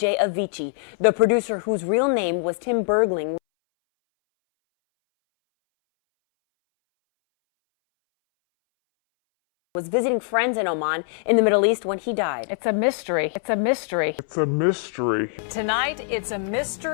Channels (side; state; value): right; silent; 62 dB below the other